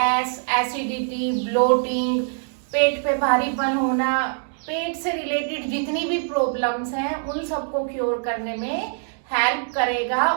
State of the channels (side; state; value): left; silent; digital silence